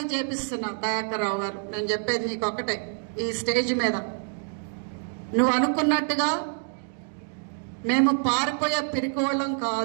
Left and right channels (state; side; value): silent; left; digital silence